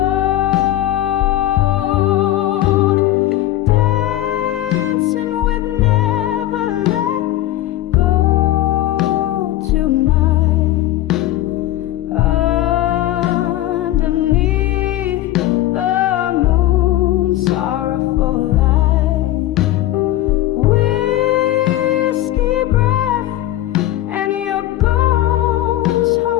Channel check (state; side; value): quieter; right; 14.4 dB